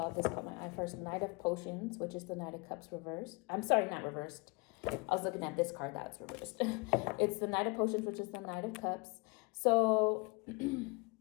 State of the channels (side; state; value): right; quieter; 28.0 dB